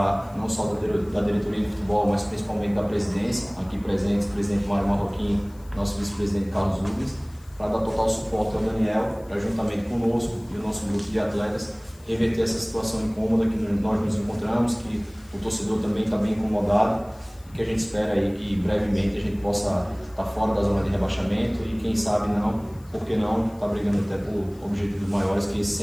não só da diretoria de futebol, mas principalmente da presidência, aqui presentes, o presidente Mário Marroquim, nosso vice-presidente Carlos Rubens, para dar total suporte ao Daniel, para juntamente conosco e o nosso grupo de atletas reverter essa situação incômoda que nós nos encontramos, que o torcedor também está bem incomodado, que a gente espera aí que brevemente a gente possa estar fora da zona de rebaixamento e quem sabe não, por que não, estar brigando até por objetivos maiores, que esse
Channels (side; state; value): left; noise; hiss, 28 dB below the sound